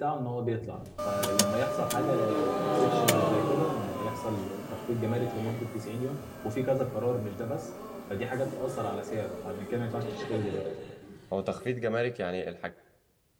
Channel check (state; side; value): identical; both; correlation 1.00